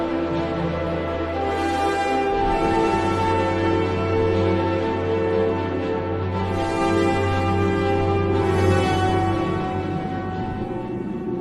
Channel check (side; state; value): both; identical; correlation 1.00